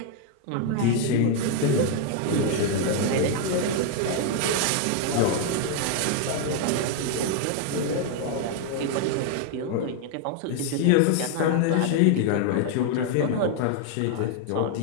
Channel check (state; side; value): different; both; correlation 0.00